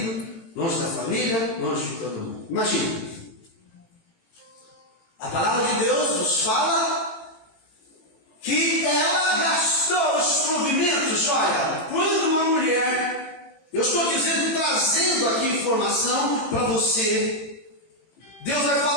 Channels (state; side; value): late; right; 18 ms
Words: longe da família, longe de todo mundo. Imagina. A palavra de Deus nos fala que ela gastou os provimentos. Olha, quando uma mulher, Eu estou dizendo, trazendo aqui informação para você. Deus vai